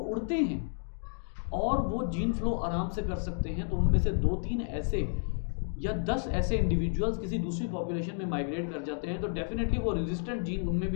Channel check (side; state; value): right; silent; 57 dB below the other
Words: हैं और वो जीन फ्लो आराम से कर सकते हैं, तो उनमें से 2-3 ऐसे या 10 ऐसे इंडिविजुअल्स किसी दूसरी पॉपुलेशन में माइग्रेट कर जाते हैं, तो डेफिनेटली वो रेजिस्टेंट जीन उनमें